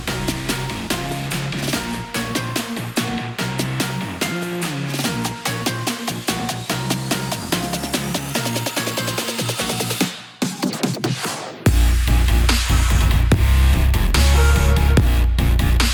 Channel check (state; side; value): identical; both; correlation 1.00